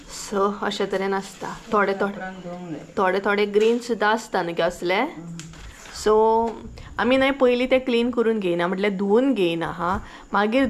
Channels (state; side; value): identical; both; correlation 1.00